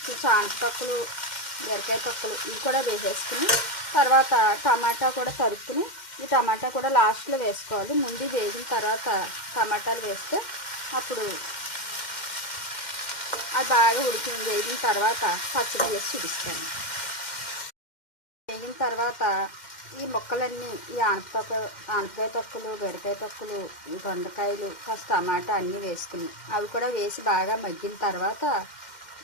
కొంచెం ఆనపకాయలు, బీరకాయ తొక్కలు ఇవి కూడా వేసేసుకుని తర్వాత టమాటా కూడా తరుక్కుని ఈ టమాటా కూడా లాస్ట్లో వేసుకోవాలి. ముందు వేగిన తర్వాత టమాటాలు వేస్తే అప్పుడు అది బాగా వేగిన తర్వాత పచ్చడి వేసి చూపిస్తాను. వేగిన తర్వాత ఈ ముక్కలన్నీ ఈ ఆనపకాయ తొక్కలు, బీరకాయ తొక్కలు, ఈ దొండకాయలు, కాస్త టమాటా అన్నీ వేసుకుని అవి కూడా వేసి బాగా మగ్గిన తర్వాత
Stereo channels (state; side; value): late; right; 2.1 ms